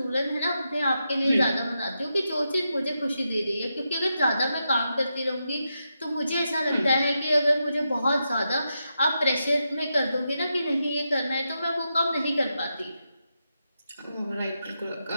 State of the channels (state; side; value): inverted; both; correlation -0.86